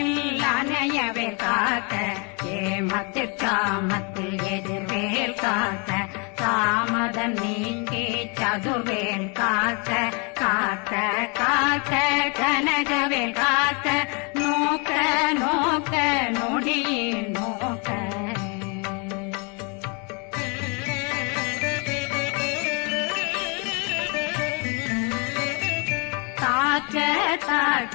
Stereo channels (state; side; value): quieter; right; 33.4 dB